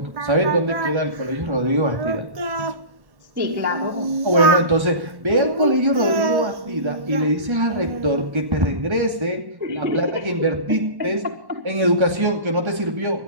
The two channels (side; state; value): left; late; 1.1 ms